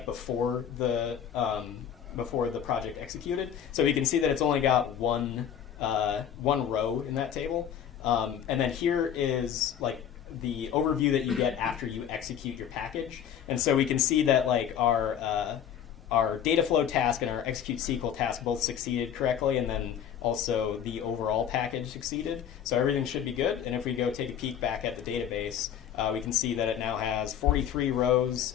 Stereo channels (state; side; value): quieter; right; 9.1 dB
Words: before the project executed. So you can see that it's only got one row in that table. And then here is like the overview that you get after you execute your package. And so we can see that like our data flow task and our execute SQL task both succeeded correctly, and then also the overall package succeeded. So everything should be good. And if we go take a peek back at the database, we can see that it now has 43 rows,